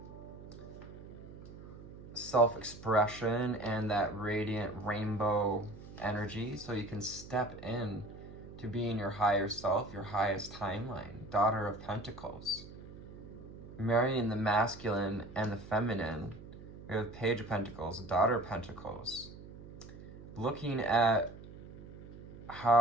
self-expression and that radiant rainbow energy, so you can step in to being your higher self, your highest timeline. Daughter of Pentacles, marrying the masculine and the feminine. We have Page of Pentacles, Daughter of Pentacles, looking at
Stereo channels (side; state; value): right; noise; hum, 15 dB below the sound